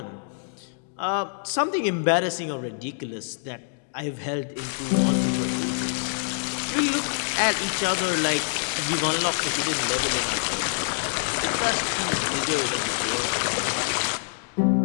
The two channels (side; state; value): right; silent; digital silence